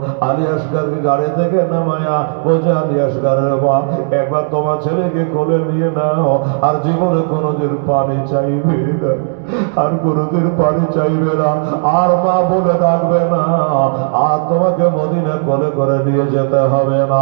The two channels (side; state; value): left; silent; digital silence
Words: আলী আসগারকে গাড়ি থেকে নামায়া বলছে, আলী আসগারের মা, একবার তোমার ছেলেকে কোলে নিয়ে নাও, আর জীবনে কোনোদিন পানি চাইবে না, আর কোনোদিন পানি চাইবে না, আর মা বলে ডাকবে না, আর তোমাকে মদিনা কোলে করে নিয়ে যেতে হবে না।